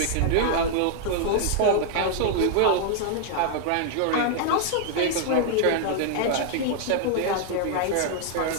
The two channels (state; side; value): different; both; correlation 0.00